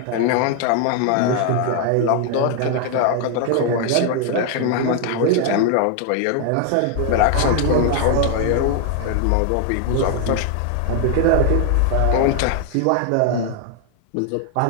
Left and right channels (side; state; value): both; different; correlation 0.00